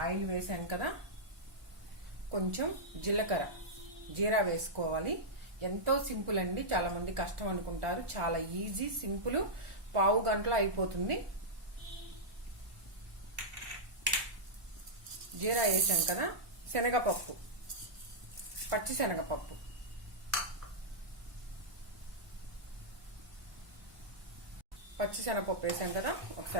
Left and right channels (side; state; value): left; late; 1.1 ms